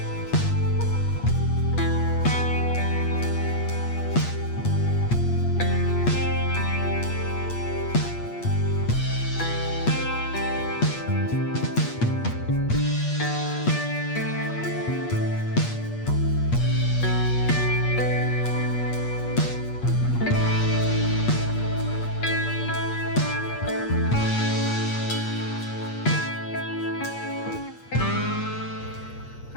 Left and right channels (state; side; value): late; right; 8.4 ms